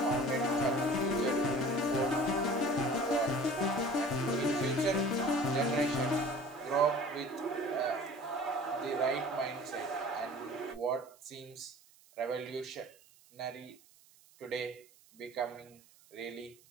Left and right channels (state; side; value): noise; right; hiss, 27 dB below the sound